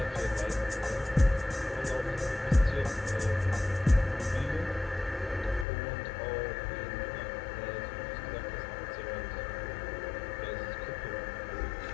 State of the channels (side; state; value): right; drops out; at 5.7 s